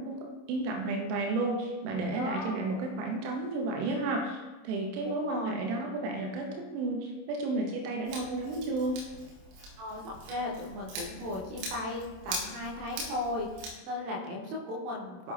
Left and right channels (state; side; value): late; left; 27 ms